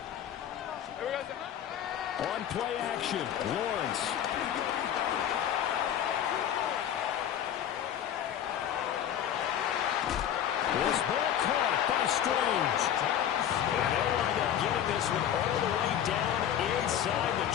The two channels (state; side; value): quieter; right; 10.1 dB